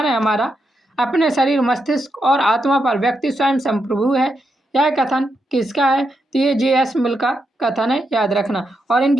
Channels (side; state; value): both; normal; correlation 0.83